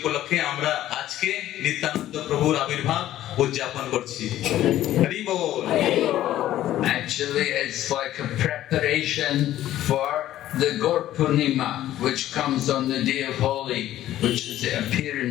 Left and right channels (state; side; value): quieter; right; 13.3 dB